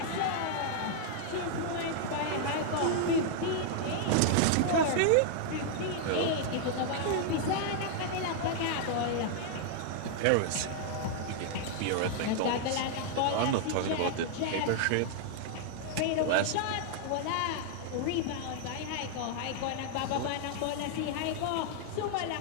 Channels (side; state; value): both; different; correlation -0.01